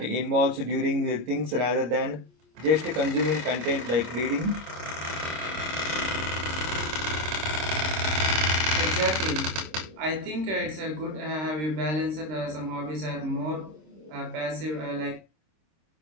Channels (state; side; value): late; left; 26 ms